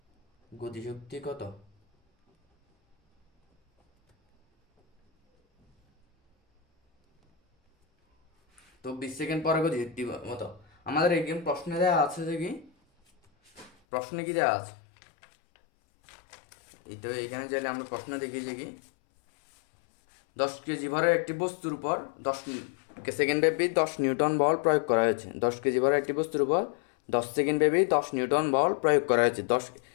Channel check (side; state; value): right; drops out; at 13.7 s